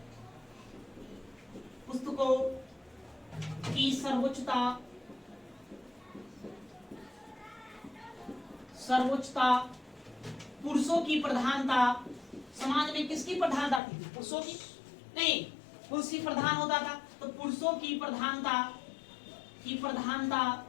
पुस्तकों की सर्वोच्चता, सर्वोच्चता, पुरुषों की प्रधानता। समाज में किसकी प्रधानता थी, पुरुषों की नहीं, पुरुष ही प्रधान होता था, तो पुरुषों की प्रधानता, की प्रधानता,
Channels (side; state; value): right; drops out; at 13.8 s